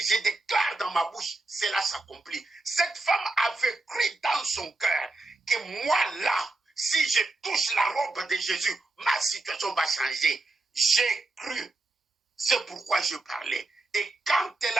je déclare dans ma bouche, cela s'accomplit. Cette femme avait cru dans son cœur que moi là, si je touche la robe de Jésus, ma situation va changer. J'ai cru. C'est pourquoi je parlais. Et quand elle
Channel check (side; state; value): left; quieter; 3.1 dB